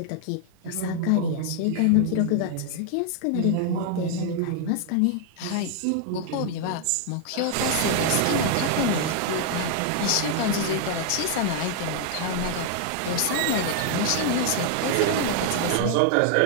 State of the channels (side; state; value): both; different; correlation 0.00